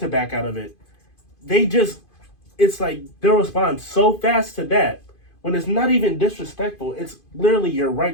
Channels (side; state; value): right; late; 2.5 ms